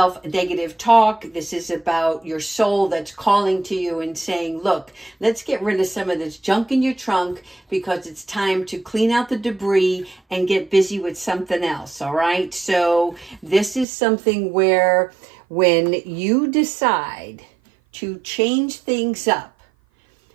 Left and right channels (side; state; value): left; drops out; at 13.9 s